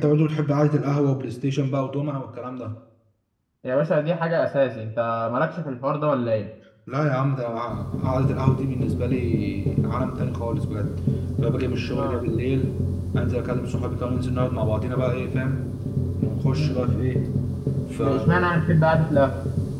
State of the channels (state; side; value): identical; both; correlation 1.00